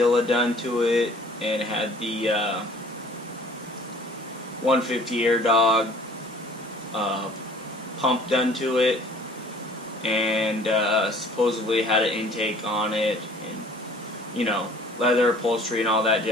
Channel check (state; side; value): normal; both; correlation 0.52